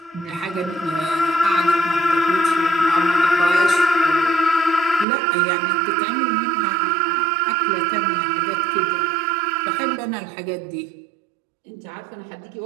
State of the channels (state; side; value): drops out; left; at 5.1 s